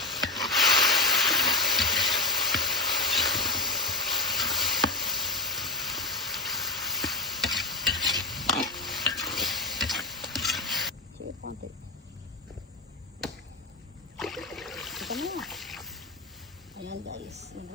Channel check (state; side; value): quieter; right; 3.0 dB